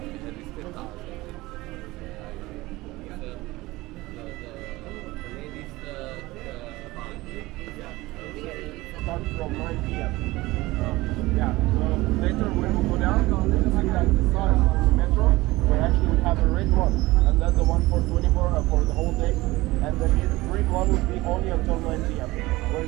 rispettare ladies Start from 9 p.m. Yeah, so later when we go down, you see that the sign on the metro, we actually have a red one, and that's the one for 24 for the whole day, and the green one will be only until 9 p.m.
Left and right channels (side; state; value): left; quieter; 19.8 dB